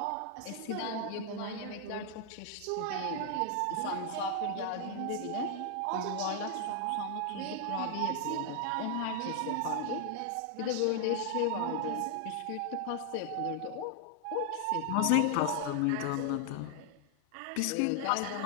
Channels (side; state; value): both; different; correlation 0.00